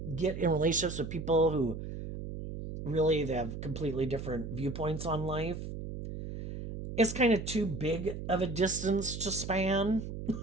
get in relationships with people who really they have completely different viewpoints on life, it's kind of too big of a distance to span.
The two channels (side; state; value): right; noise; hum, 8 dB below the sound